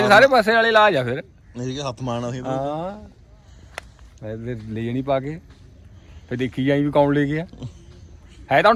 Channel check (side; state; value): both; identical; correlation 1.00